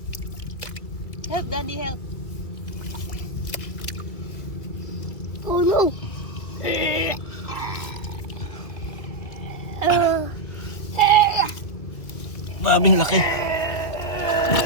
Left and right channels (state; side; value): late; right; 2.0 ms